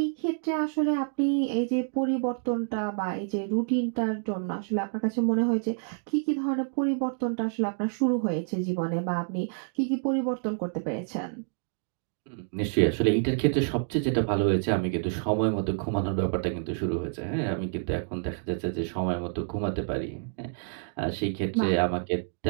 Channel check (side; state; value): left; silent; digital silence